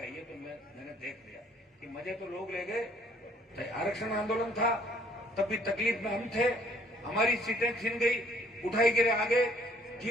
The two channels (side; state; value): both; normal; correlation 0.61